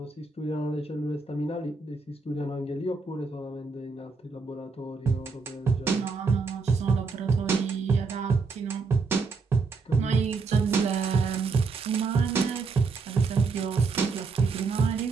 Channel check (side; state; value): left; quieter; 4.4 dB